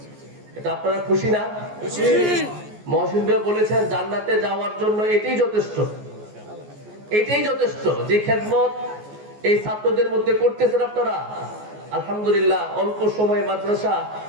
এটা আপনারা খুশি না? খুশি। মহসিন ভাই বলেছেন জান্নাতে যাওয়ার জন্য এটাই যথেষ্ট, এটাই যথেষ্ট যে খেদমত এই ছাত্রদের মধ্যে করতেছেন আপনারা। আলহামদুলিল্লাহ অল্প সময়ে মাদ্রাসা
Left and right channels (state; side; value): late; left; 14 ms